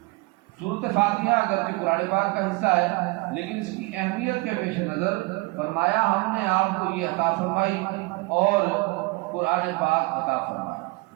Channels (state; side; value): quieter; left; 25.6 dB